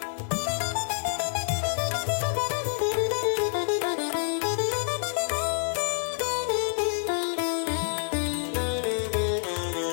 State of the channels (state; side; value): silent; right; digital silence